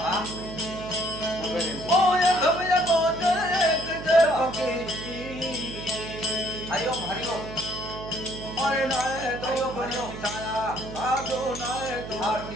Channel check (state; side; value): noise; right; hum, 10 dB below the sound